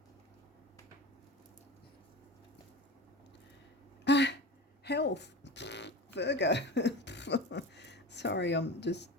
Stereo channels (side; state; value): both; normal; correlation 0.30